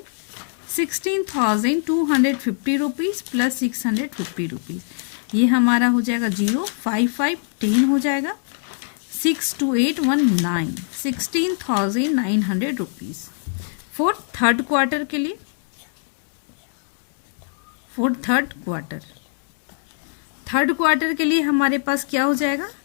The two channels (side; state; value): right; silent; digital silence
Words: 16,250 rupees plus 650 rupees. ये हमारा हो जाएगा 0 5 5 10 हो जाएगा, 6 2 8 1 9, 16,900 रुपीज फॉर थर्ड क्वार्टर के लिए। फॉर थर्ड क्वार्टर के लिए हमारे पास क्या हो जाएगा,